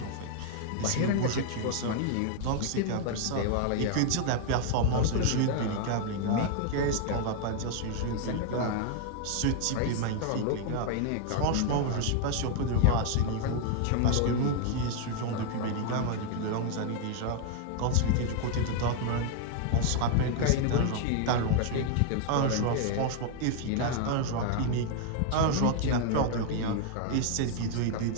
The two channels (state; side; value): different; both; correlation 0.00